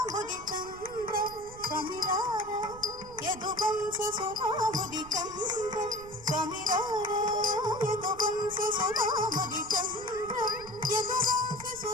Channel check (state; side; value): noise; right; rumble, 17 dB below the sound